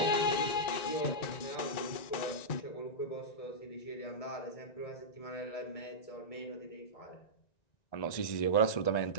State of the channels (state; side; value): late; right; 1.9 ms